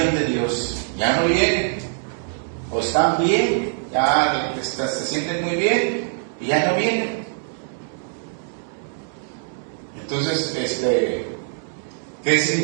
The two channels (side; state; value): left; silent; digital silence